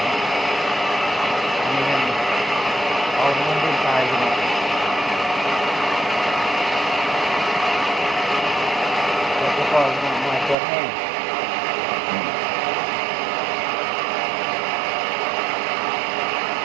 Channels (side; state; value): left; drops out; at 10.6 s